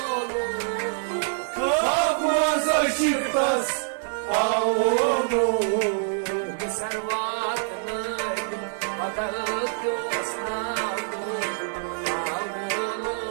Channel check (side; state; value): left; silent; digital silence